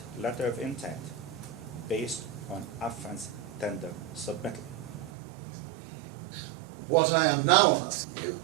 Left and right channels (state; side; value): drops out; left; at 5.1 s